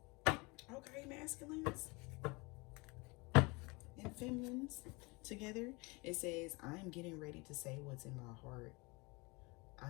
Okay, masculines and feminines together. It says, I am getting ready to say what's in my heart.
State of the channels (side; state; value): right; quieter; 26.5 dB